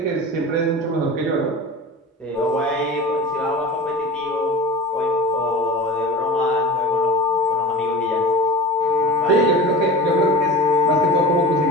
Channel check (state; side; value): normal; both; correlation 0.34